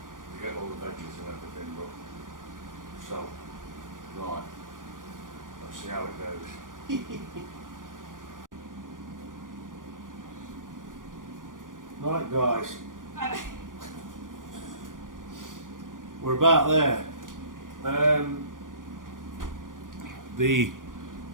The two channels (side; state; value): left; late; 0.89 ms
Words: to get all the veggies and everything. But so, right, let's see how it goes. Right, guys, we're about there. The